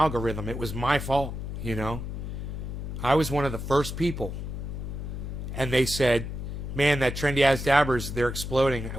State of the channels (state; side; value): noise; left; hum, 6 dB below the sound